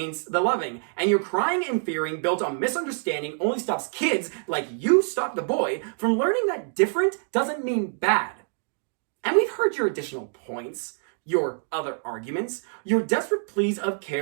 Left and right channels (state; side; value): silent; left; digital silence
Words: the loving. And your crying and fearing built on misunderstanding only stops kids, like you stopped the boy, from learning that different doesn't mean bad. And we've heard your additional points, your other arguments, your desperate pleas of